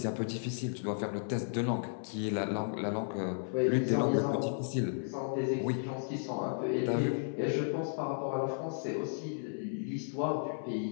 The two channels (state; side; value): silent; right; 55 dB below the other